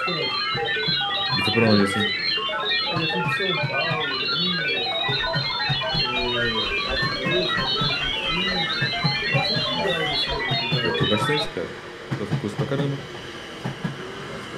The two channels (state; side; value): identical; both; correlation 1.00